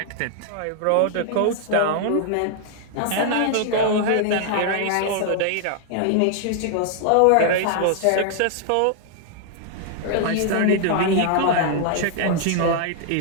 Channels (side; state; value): both; different; correlation 0.00